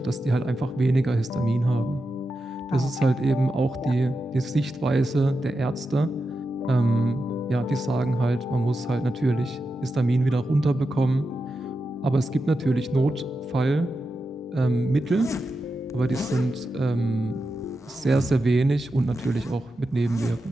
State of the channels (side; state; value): both; normal; correlation 0.89